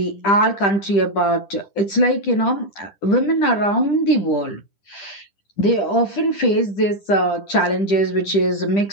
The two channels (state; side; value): late; right; 10 ms